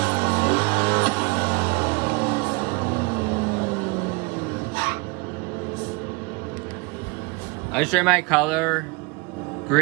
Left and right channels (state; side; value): quieter; left; 28.3 dB